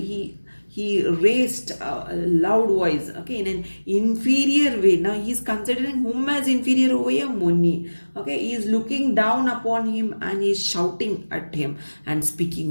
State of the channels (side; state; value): both; inverted; correlation -1.00